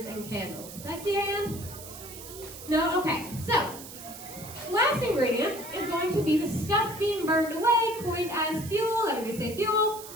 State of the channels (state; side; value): noise; right; hiss, 14 dB below the sound